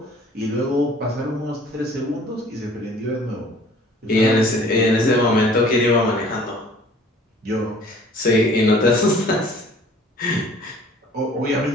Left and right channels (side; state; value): both; normal; correlation 0.52